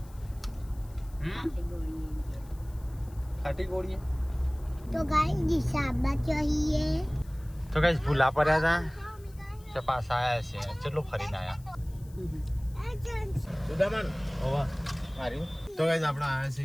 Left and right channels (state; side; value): noise; left; hiss, 26 dB below the sound